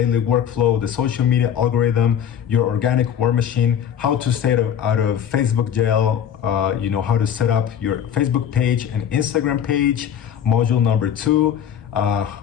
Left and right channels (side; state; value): right; quieter; 9.1 dB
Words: workflow, the social media algorithm, your organic war machine, how to stay out of Facebook jail, how to set up your Facebook page and Instagram page, module number 2,